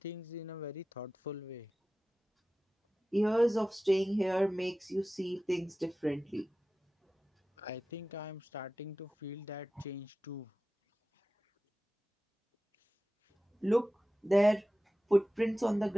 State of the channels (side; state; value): both; normal; correlation 0.95